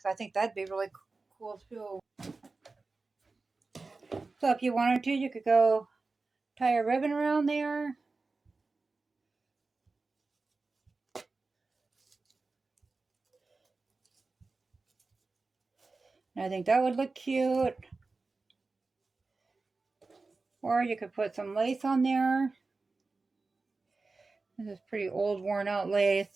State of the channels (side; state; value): left; quieter; 3.8 dB